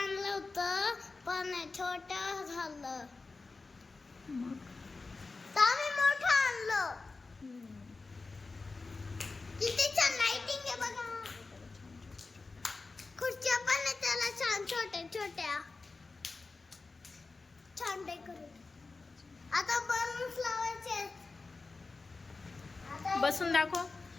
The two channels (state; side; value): quieter; right; 3.9 dB